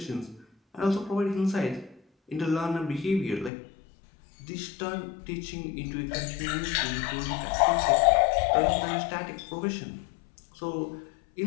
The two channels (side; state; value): right; drops out; at 3.5 s